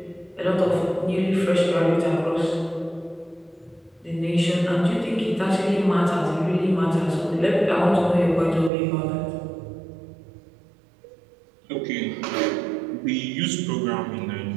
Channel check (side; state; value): left; drops out; at 8.7 s